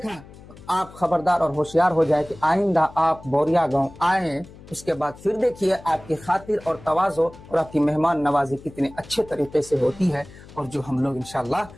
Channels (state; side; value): noise; left; hum, 20 dB below the sound